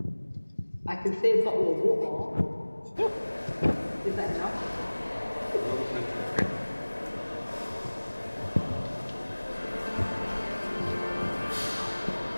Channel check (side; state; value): both; inverted; correlation -1.00